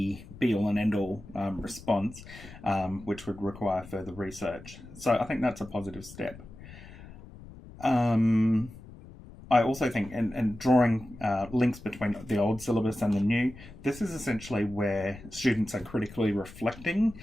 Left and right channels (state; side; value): noise; left; rumble, 17 dB below the sound